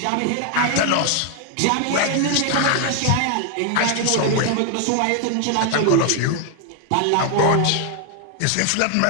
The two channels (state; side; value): different; both; correlation 0.00